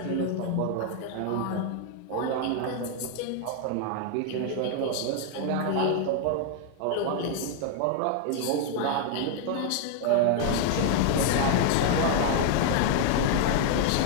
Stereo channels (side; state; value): both; different; correlation 0.00